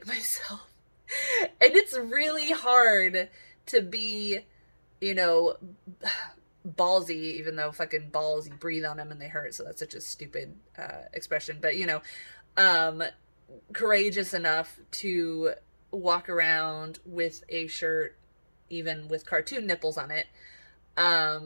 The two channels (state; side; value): inverted; both; correlation -1.00